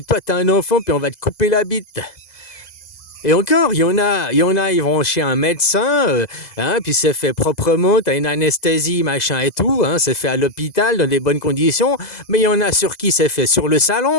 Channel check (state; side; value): late; right; 2.0 ms